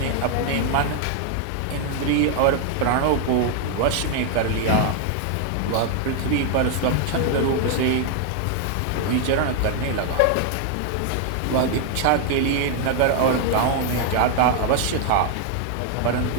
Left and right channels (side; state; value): both; different; correlation 0.00